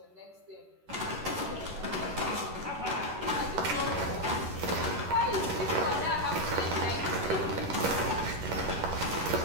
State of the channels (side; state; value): left; late; 11 ms